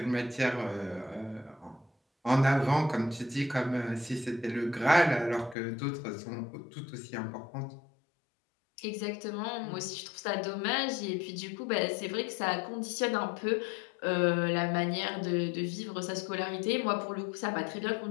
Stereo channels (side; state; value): right; drops out; at 5.6 s